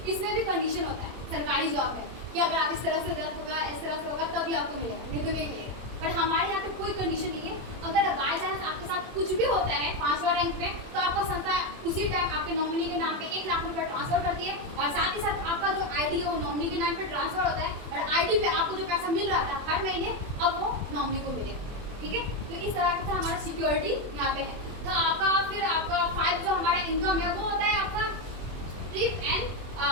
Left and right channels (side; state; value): left; late; 24 ms